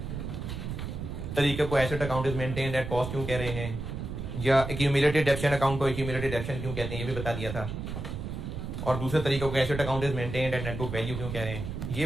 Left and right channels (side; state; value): right; noise; rumble, 6 dB below the sound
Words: तरीके को asset account is maintained at cost क्यों कह रहे हैं, या एक्यूमुलेटेड डेप्शन अकाउंट को एक्यूमुलेटेड डेप्शन क्यों कहते हैं, ये भी बता दिया था। और दूसरे तरीकों को asset account is maintained at net book value क्यों कह रहे हैं,